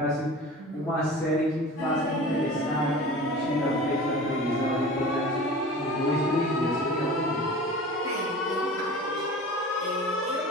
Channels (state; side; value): normal; both; correlation 0.37